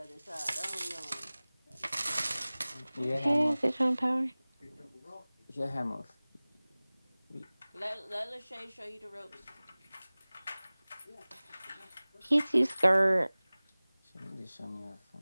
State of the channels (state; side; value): inverted; both; correlation -0.99